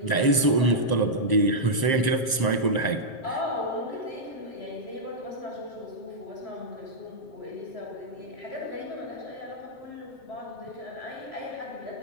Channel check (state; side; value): late; right; 7.6 ms